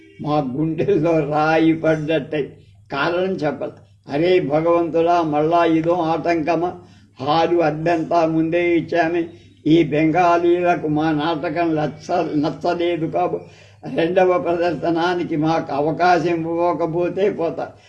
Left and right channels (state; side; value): identical; both; correlation 1.00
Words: మా గుండెల్లో రాయి పడ్డట్టయి. కారణం చెప్పదు. అరే భగవంతుడా, మళ్ళా ఇదో ఆటంకమా? హాలు అద్దెంతా ముందే ఇచ్చామే. ఈ బెంగాలీలకు మా నాటకం నచ్చలేదు రెండవ ప్రదర్శనానికి మాకు అవకాశం ఇవ్వకపోతే పోతారు.